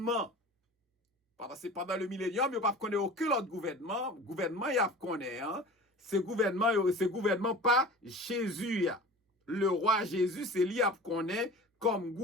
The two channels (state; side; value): normal; both; correlation 0.38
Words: Parce que pendant le millénium, il n'y a pas connaît aucun autre gouvernement. Gouvernement, il y a connaît. Hein? Ce gouvernement pas Jésus. Le roi Jésus, c'est lui qui connaît comme